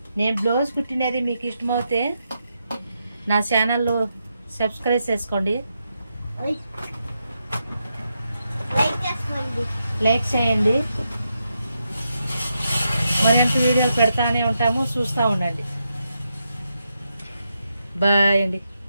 నేను బ్లౌజ్ కుట్టినది మీకు ఇష్టమవుతే నా ఛానల్లో సబ్స్క్రైబ్ చేసుకోండి, లైక్ చేయండి. మరింత వీడియోలు పెడతానే ఉంటాము, చూస్తూ ఉండండి. బాయ్ అండి.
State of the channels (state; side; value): inverted; both; correlation -0.84